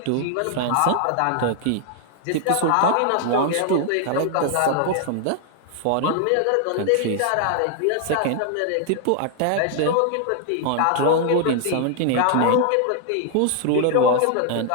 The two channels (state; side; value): different; both; correlation 0.00